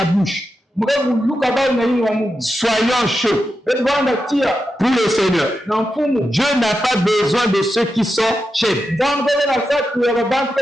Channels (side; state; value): both; normal; correlation 0.88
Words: bouche. Soyons chauds pour le Seigneur. Dieu n'a pas besoin de ceux qui sont tièdes.